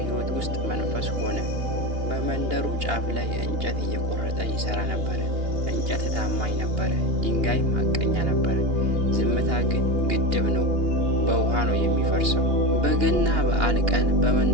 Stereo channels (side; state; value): left; late; 2.8 ms